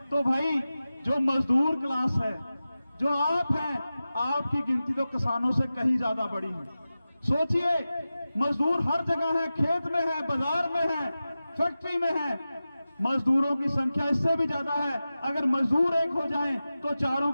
तो भाई जो मजदूर क्लास है, जो आप हैं, आपकी गिनती तो किसानों से कहीं ज्यादा बड़ी है। सोचिए, मजदूर हर जगह है, खेत में है, बाजार में है, फैक्ट्री में है। मजदूरों की संख्या इससे भी ज्यादा है। अगर मजदूर एक हो जाएं तो चारों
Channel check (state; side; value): inverted; both; correlation -0.94